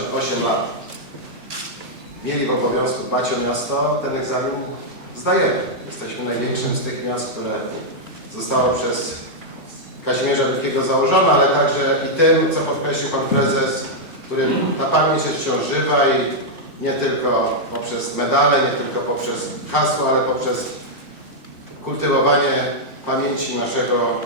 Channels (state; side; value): late; left; 2.6 ms